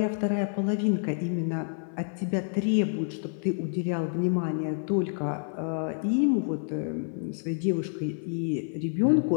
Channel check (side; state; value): right; silent; 59 dB below the other